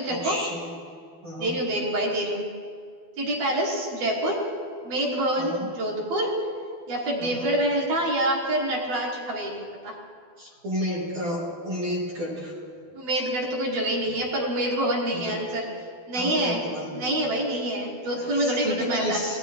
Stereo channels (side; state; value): left; late; 12 ms